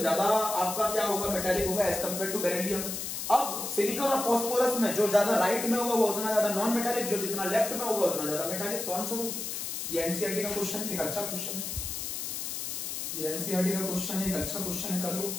ज्यादा आपका क्या होगा? मेटेलिक होगा एज कंपेयर टू बेरिलियम। अब सिलिकॉन और फास्फोरस में जो ज्यादा राइट में होगा वो उतना ज्यादा नॉन मेटेलिक, जो जितना लेफ्ट में होगा उतना ज्यादा मेटेलिक। तो आंसर होगा ये। एनसीईआरटी का क्वेश्चन, एक अच्छा क्वेश्चन है ये। एनसीईआरटी का क्वेश्चन है, एक अच्छा क्वेश्चन है, कर लो,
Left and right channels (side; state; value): left; noise; hiss, 4 dB below the sound